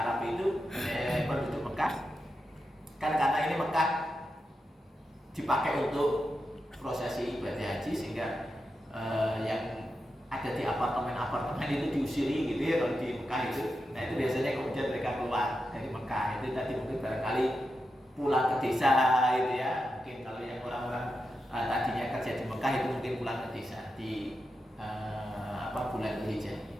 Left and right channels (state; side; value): normal; both; correlation 0.88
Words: itu penduduk Mekah, kan karena ini Mekah dipakai untuk prosesi ibadah haji, sehingga yang ada di apartemen itu diusiri gitu ya kalau di Mekah itu. Nah itu biasanya kemudian mereka keluar dari Mekah. Itu tadi mungkin barangkali pulang ke desa itu ya. Mungkin kalau yang orang-orang tadinya kerja di Mekah itu mungkin pulang ke desa di bulan Dzulhijjah.